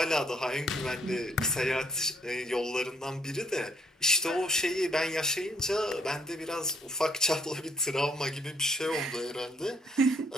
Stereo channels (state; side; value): normal; both; correlation 0.66